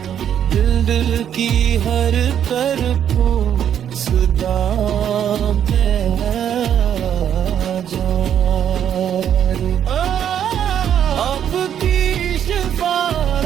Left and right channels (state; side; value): quieter; left; 9.4 dB